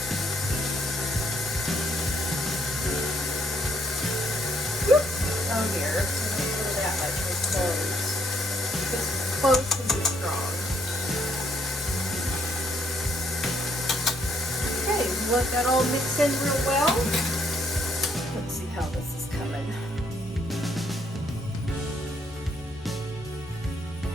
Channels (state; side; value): normal; both; correlation 0.70